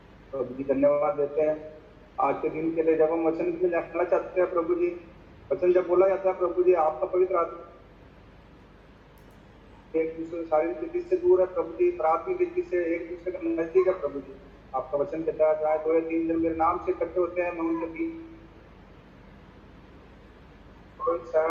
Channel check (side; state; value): both; identical; correlation 1.00